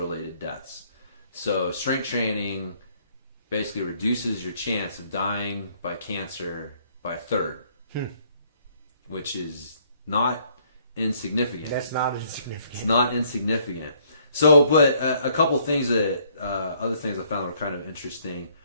deaths. So strength training basically reduces your chance of dying by cancer by a third, which is not insignificant. That's not insignificant. It's not insignificant. So, but a couple things that, other things I found were kind of interesting,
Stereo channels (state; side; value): inverted; both; correlation -0.64